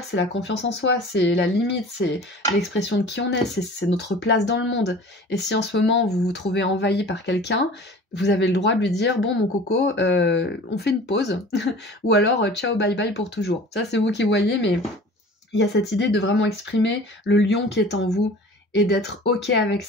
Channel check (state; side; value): normal; both; correlation 0.42